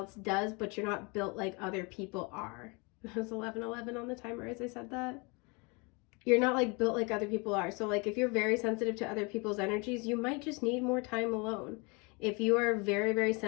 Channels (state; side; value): quieter; right; 29.9 dB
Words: does, but you're not built like other people are. It was 11:11 on the timer as I said that. You're not like built like other people are. So like if you're very sensitive to other people's energies, you might just need more time alone. If you are very, very